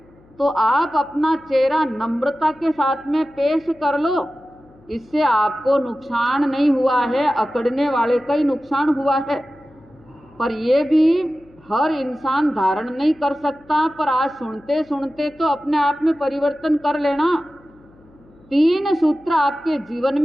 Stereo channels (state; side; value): noise; left; hum, 28 dB below the sound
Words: तो आप अपना चेहरा नम्रता के साथ में पेश कर लो, इससे आपको नुकसान नहीं हुआ है, अकड़ने वाले का ही नुकसान हुआ है। पर ये भी हर इंसान धारण नहीं कर सकता, पर आज सुनते सुनते तो अपने आप में परिवर्तन कर लेना। 3 सूत्र आपके जीवन